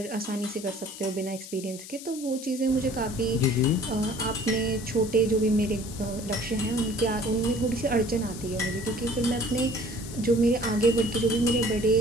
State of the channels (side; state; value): left; noise; hiss, 13 dB below the sound